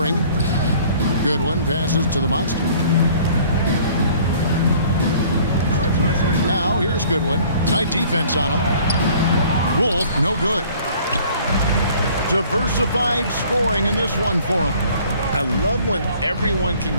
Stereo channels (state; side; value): inverted; both; correlation -0.54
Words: Goodwin passes to the monster. Now, here's Goodwin. Tight defense on him. Wolf, no good. Diversified scoring in this one for him. I love when everyone can